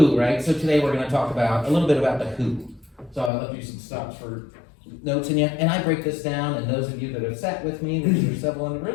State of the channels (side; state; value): right; drops out; at 3.3 s